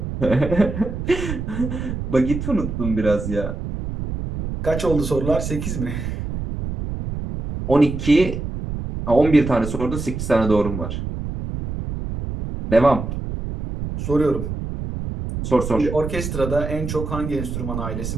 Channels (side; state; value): right; noise; rumble, 5 dB below the sound